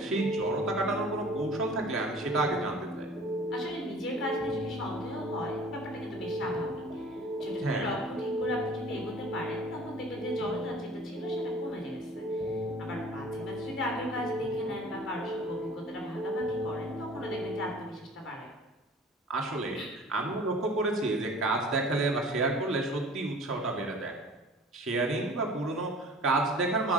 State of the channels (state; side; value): normal; both; correlation 0.46